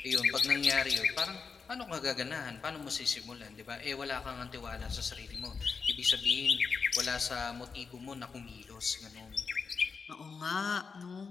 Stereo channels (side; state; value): right; quieter; 5.2 dB